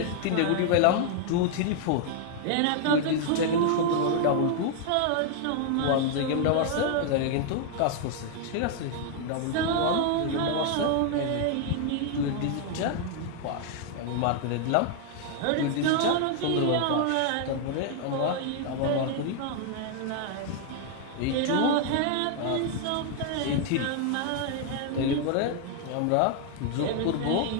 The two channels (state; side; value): different; both; correlation 0.00